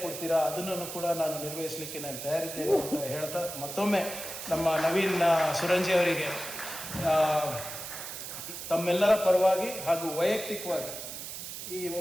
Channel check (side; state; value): right; noise; hiss, 8 dB below the sound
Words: ಕೊಡ್ತೀರಾ ಅದನ್ನು ಕೂಡ ನಾನು ನಿರ್ವಹಿಸಲಿಕ್ಕೆ ನಾನು ತಯಾರಿದ್ದೇನೆ ಅಂತ ಹೇಳ್ತಾ, ಮತ್ತೊಮ್ಮೆ ನಮ್ಮ ನವೀನ್ ಸುರಂಜಿ ಅವರಿಗೆ ತಮ್ಮೆಲ್ಲರ ಪರವಾಗಿ ಹಾಗೂ ವೈಯಕ್ತಿಕವಾಗಿ ಈ